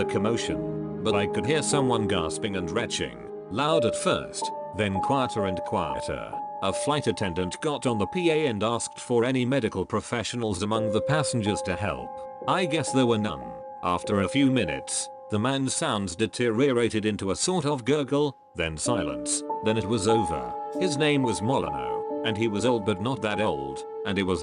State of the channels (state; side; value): identical; both; correlation 1.00